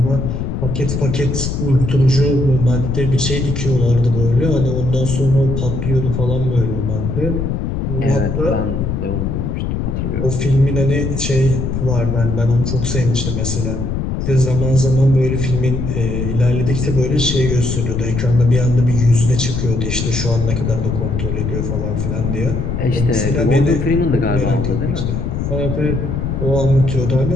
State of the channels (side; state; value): left; noise; rumble, 2 dB below the sound